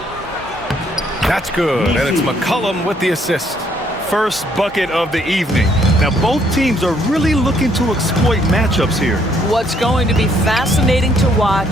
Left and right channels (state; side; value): normal; both; correlation 0.68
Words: That's good, and it's McCollum with the assist. First bucket of the evening. Now both teams are really looking to exploit matchups here. What's going to be fascinating to